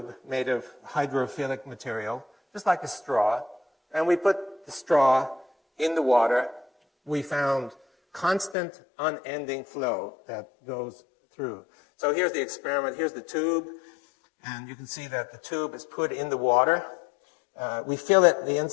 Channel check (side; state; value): right; drops out; at 8.6 s